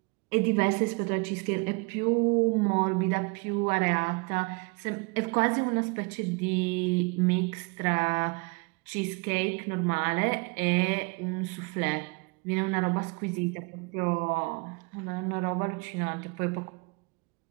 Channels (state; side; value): quieter; left; 30.2 dB